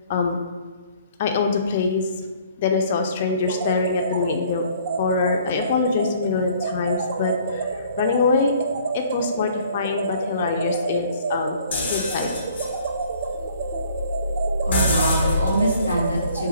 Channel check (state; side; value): inverted; both; correlation -0.57